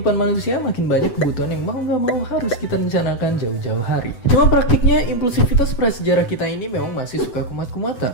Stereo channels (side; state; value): right; late; 8.0 ms